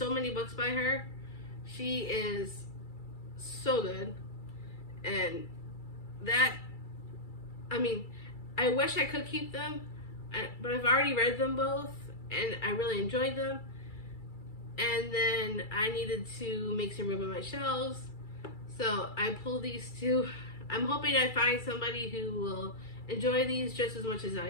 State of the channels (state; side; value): late; right; 2.3 ms